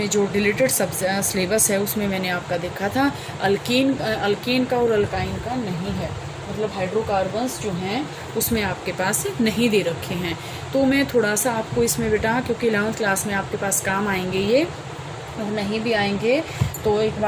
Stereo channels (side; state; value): both; identical; correlation 1.00